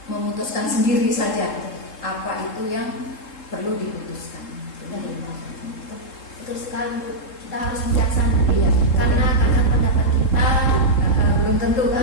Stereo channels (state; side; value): late; right; 3.7 ms